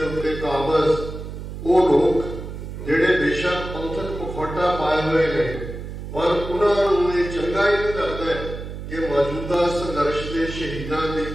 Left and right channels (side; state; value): right; noise; hum, 9 dB below the sound